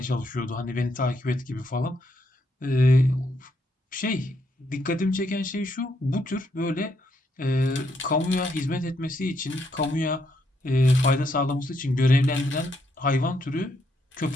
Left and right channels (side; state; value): both; normal; correlation 0.76